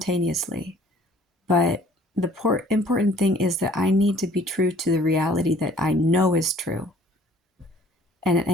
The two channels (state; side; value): normal; both; correlation 0.55